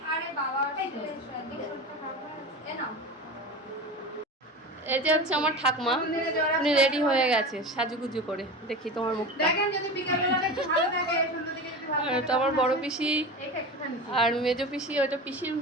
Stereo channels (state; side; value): normal; both; correlation 0.29